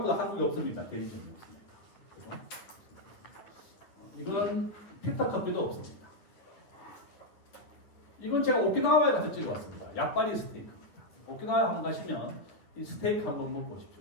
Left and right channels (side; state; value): right; late; 9.4 ms